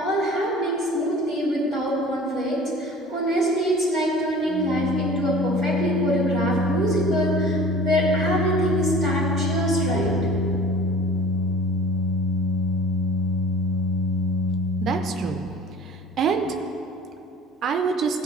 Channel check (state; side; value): normal; both; correlation 0.44